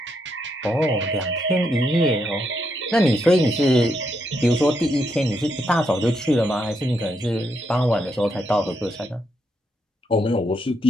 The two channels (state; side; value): normal; both; correlation 0.79